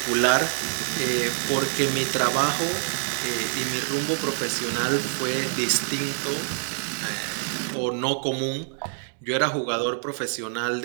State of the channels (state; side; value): silent; left; 61 dB below the other